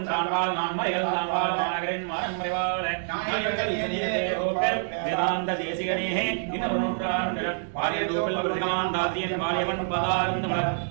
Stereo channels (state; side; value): silent; left; digital silence